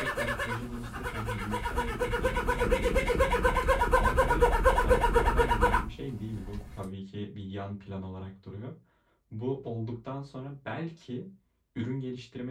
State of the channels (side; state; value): both; identical; correlation 1.00